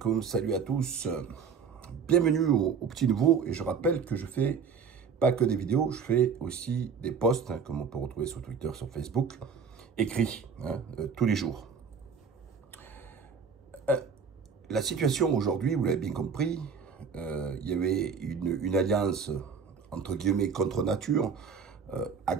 salut à tous. Bienvenue au Petit Nouveau. Et je rappelle que je fais pas que des vidéos, je fais aussi des posts, comme on peut retrouver sur Twitter, sur Facebook, écrits, tous les jours. La situation aujourd'hui, vous l'avez bien compris, il y avait une alliance, entre guillemets, contre nature, à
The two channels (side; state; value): left; quieter; 6.2 dB